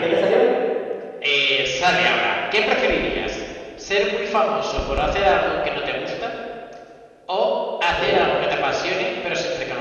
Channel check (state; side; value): identical; both; correlation 1.00